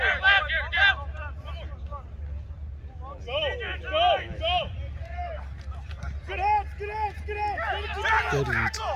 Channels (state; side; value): identical; both; correlation 1.00